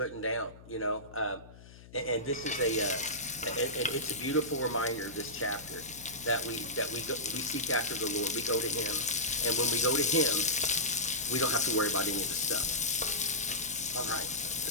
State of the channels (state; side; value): noise; left; hum, 20 dB below the sound